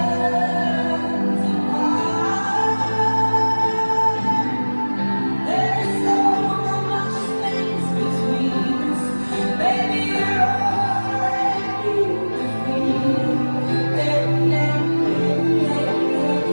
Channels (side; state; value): both; inverted; correlation -1.00